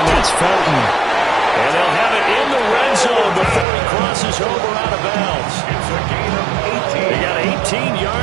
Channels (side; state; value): left; drops out; at 3.7 s